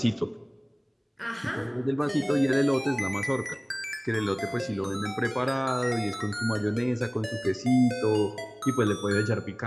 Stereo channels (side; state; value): both; identical; correlation 1.00